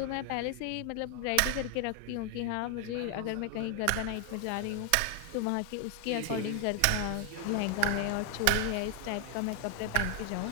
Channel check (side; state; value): both; different; correlation 0.00